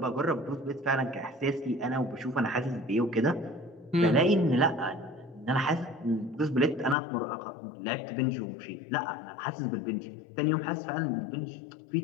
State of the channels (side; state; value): right; drops out; at 7.0 s